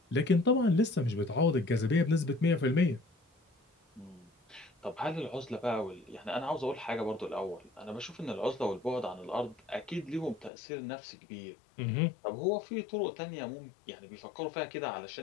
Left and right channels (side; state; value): right; drops out; at 10.5 s